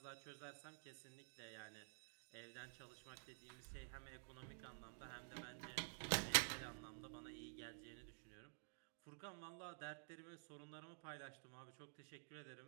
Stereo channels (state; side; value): silent; left; digital silence